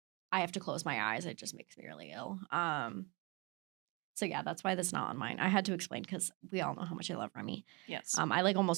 I have to close my eyes. It just makes me really ill. So yeah, that's why that's not on mine. I had to explain because we all know how much I love Remy. Yes. I like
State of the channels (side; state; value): left; quieter; 28.0 dB